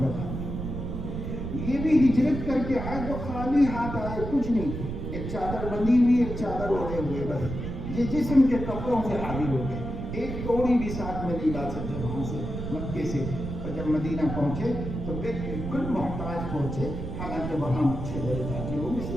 تھے۔ یہ بھی ہجرت کر کے آئے تو خالی ہاتھ آئے، کچھ نہیں، ایک چادر بندی ہوئی، ایک چادر اوڑھے ہوئے، بس یہ جسم کے کپڑوں سے حاضر ہو گئے، ایک توڑی بھی ساتھ میں نہیں لا سکتے وہاں سے مکے سے۔ اور جب مدینہ پہنچے تو بالکل محتاج پہنچے، حالانکہ وہاں اچھے بڑے تاجروں میں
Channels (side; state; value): right; noise; rumble, 6 dB below the sound